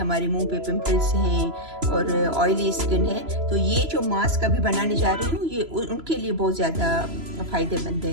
मुंह पे पिंपल्स हैं और ऑयली स्किन है। तो ये जो मास्क अभी बनाने जा रही हूँ ये उनके लिए बहुत ज़्यादा फ़ायदेमंद है।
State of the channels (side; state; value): left; late; 3.0 ms